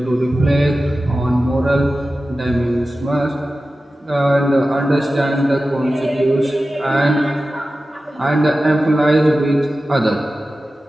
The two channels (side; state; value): both; normal; correlation 0.94